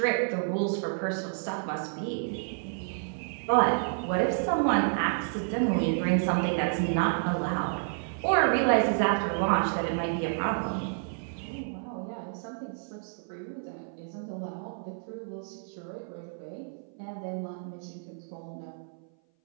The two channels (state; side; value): silent; left; 56 dB below the other